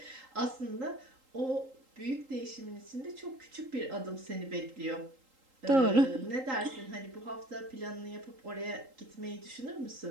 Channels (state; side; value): late; left; 3.8 ms